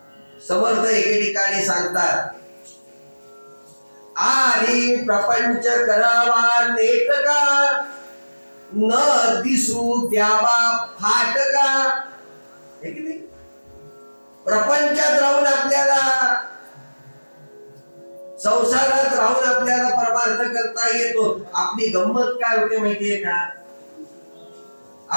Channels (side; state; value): both; inverted; correlation -1.00